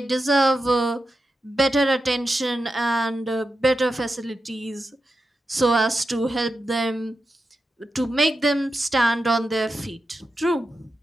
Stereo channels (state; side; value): normal; both; correlation 0.89